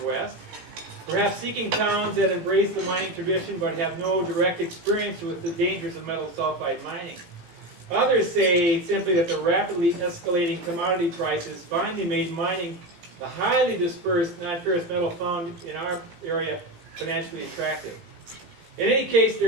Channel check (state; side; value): late; left; 17 ms